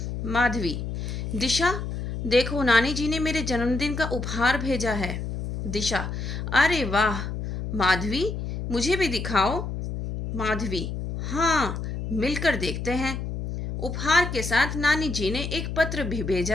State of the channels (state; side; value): noise; left; hum, 5 dB below the sound